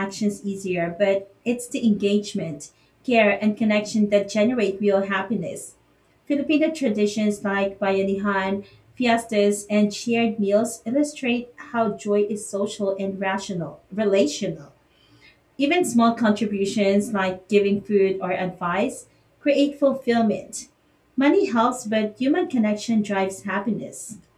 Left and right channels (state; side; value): identical; both; correlation 1.00